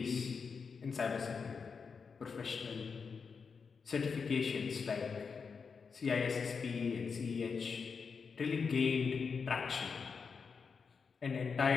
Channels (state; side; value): quieter; right; 5.5 dB